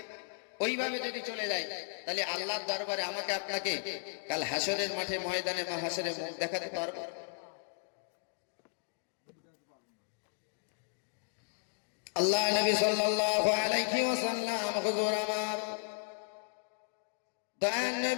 ওইভাবে যদি চলে যায়, তাহলে আল্লাহর দরবারে আমাকে আপনাকে কাল হাসরের মাঠে, ময়দানে মাহশরে মুখ দেখাতে পারবো? আল্লাহ নবী সাল্লাল্লাহু আলাইহি ওয়াসাল্লাম, হুজুর আমার দয়ার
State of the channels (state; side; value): silent; right; digital silence